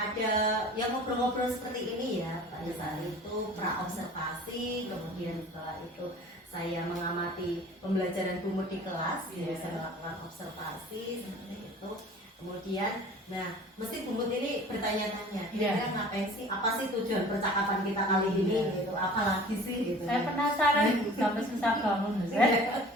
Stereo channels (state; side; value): normal; both; correlation 0.45